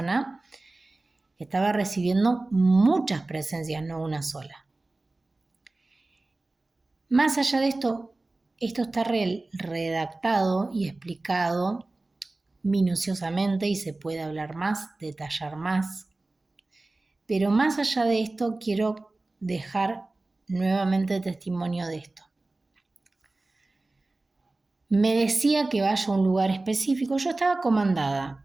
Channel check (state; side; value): quieter; left; 3.1 dB